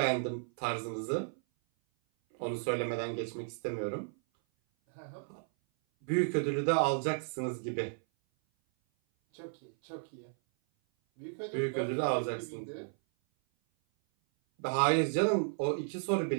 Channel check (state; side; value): silent; left; 55 dB below the other